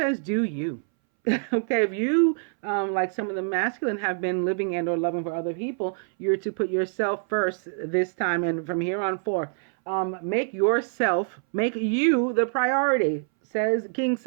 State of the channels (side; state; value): left; silent; 61 dB below the other